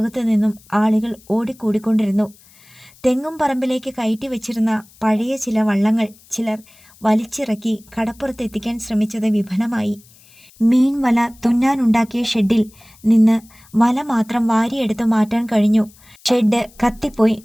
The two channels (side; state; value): left; noise; hiss, 27 dB below the sound